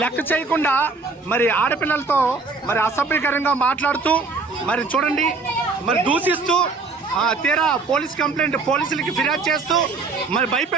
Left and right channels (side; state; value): left; quieter; 4.2 dB